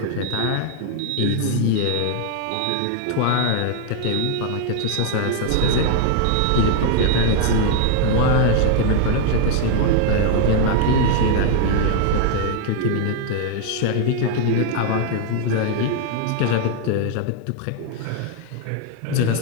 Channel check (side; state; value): both; different; correlation 0.00